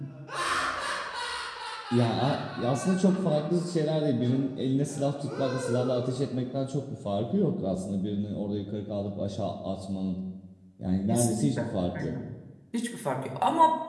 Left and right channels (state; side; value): identical; both; correlation 1.00